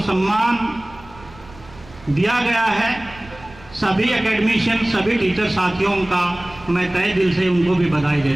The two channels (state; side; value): noise; right; rumble, 21 dB below the sound